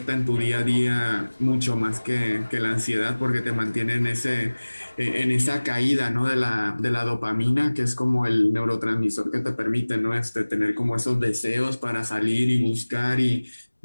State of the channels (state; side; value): inverted; both; correlation -1.00